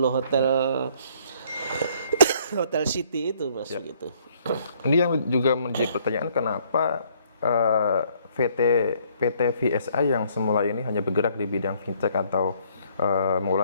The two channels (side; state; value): both; inverted; correlation -0.64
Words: Hotel City itu, Mas, gitu. Ini yang juga menjadi pertanyaan, kenapa PT VSI yang semula ini hanya bergerak di bidang fintech atau